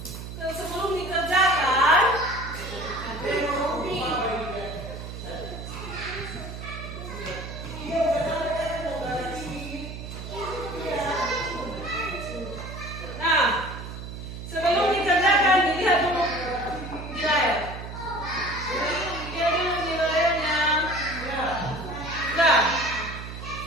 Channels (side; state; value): right; noise; hum, 9 dB below the sound